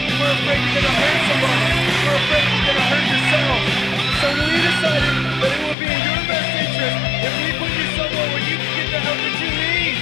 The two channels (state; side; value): drops out; right; at 5.8 s